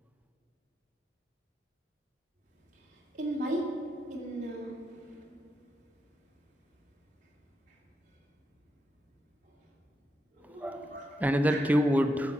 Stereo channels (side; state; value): both; normal; correlation 0.84